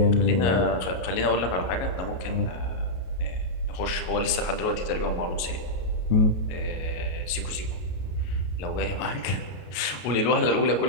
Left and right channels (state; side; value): late; right; 33 ms